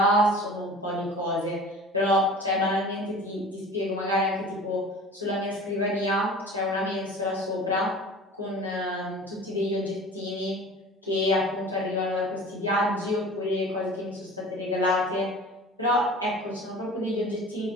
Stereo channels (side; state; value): both; normal; correlation 0.41